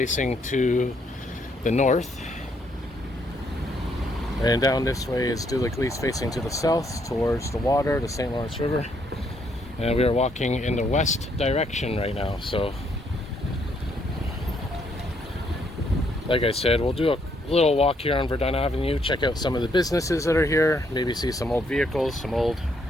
to the north. And down this way is De l'Église facing to the south towards the water, the St. Lawrence River. And we are walking in the west direction right now. So like I said, we'll do a little walk here on Verdun Avenue, check out some of the businesses that are here, maybe see some old vehicles, some old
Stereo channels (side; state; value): both; normal; correlation 0.72